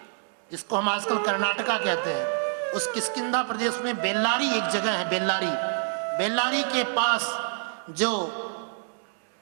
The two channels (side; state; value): left; silent; digital silence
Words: जिसको हम आजकल कर्नाटका कहते हैं, उस किष्किंधा प्रदेश में बेल्लारी एक जगह है, बेल्लारी के पास जो